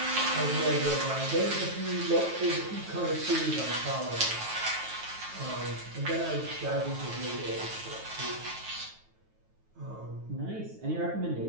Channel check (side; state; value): left; late; 9.3 ms